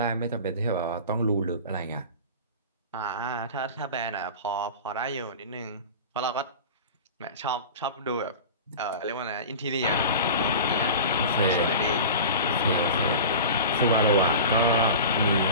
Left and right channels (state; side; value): inverted; both; correlation -0.33